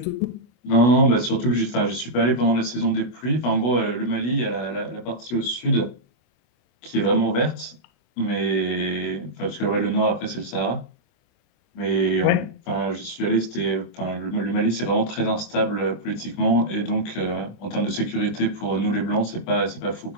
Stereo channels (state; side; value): late; right; 24 ms